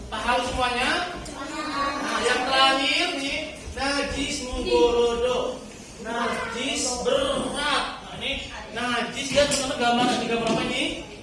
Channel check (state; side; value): identical; both; correlation 1.00